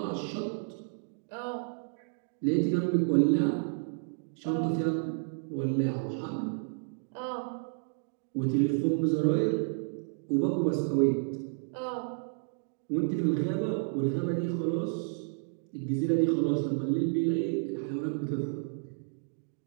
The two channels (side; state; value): left; silent; digital silence